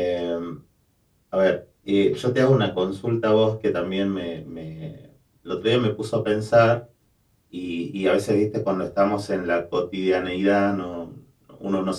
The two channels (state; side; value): identical; both; correlation 1.00